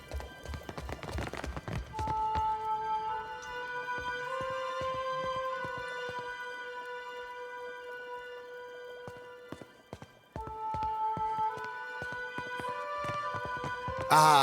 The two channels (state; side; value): identical; both; correlation 1.00